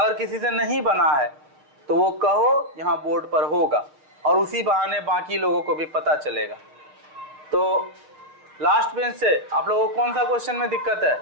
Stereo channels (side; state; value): left; late; 6.7 ms